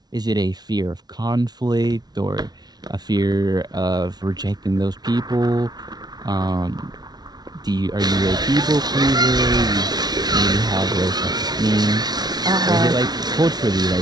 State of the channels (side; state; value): left; late; 0.19 ms